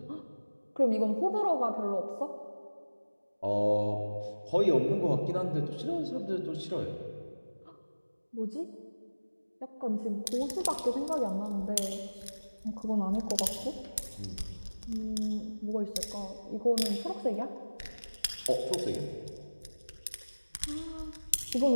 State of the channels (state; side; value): inverted; both; correlation -1.00